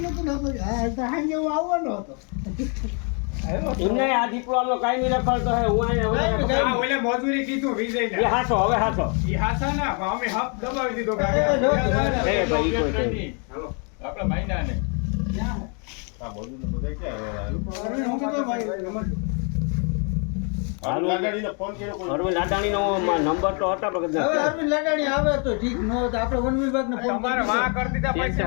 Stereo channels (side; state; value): right; quieter; 37.9 dB